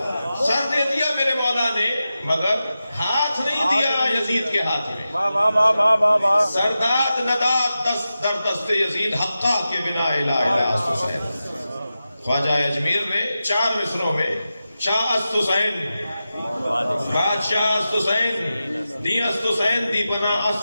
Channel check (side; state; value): both; inverted; correlation -0.92